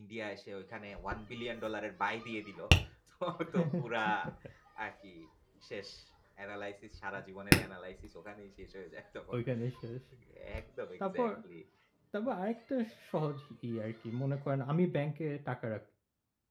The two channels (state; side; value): identical; both; correlation 1.00